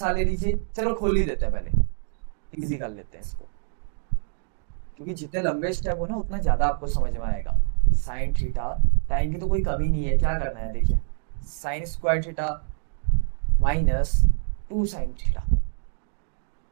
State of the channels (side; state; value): left; silent; 61 dB below the other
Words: ले लीजिए। चलो खोल ही देते हैं, पहले इजी कर लेते हैं इसको, क्योंकि जितने लंबे स्टेप हो ना उतना ज्यादा आपको समझ में आएगा। साइन थीटा, टाइम की तो कोई कमी नहीं है, क्या करना है देखिए, sign square theta minus 2 sine theta,